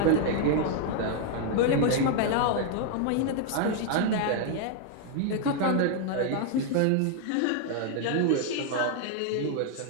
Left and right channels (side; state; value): both; different; correlation 0.00